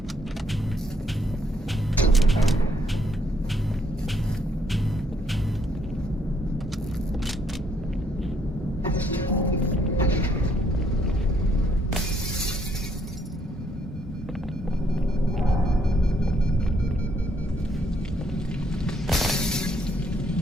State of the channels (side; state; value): both; normal; correlation 0.70